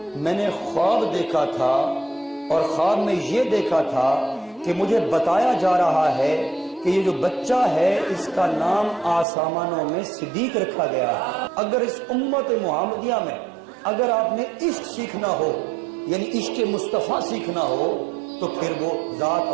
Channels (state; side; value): drops out; left; at 9.2 s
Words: میں نے خواب دیکھا تھا، اور خواب میں یہ دیکھا تھا کہ مجھے بتایا جا رہا ہے کہ یہ جو بچہ ہے اس کا نام آسمانوں میں صدیق رکھا گیا۔ اگر اس امت محمدیہ میں اگر آپ نے عشق سیکھنا ہو، یعنی عشق مصطفیٰ سیکھنا ہو، تو پھر وہ ذات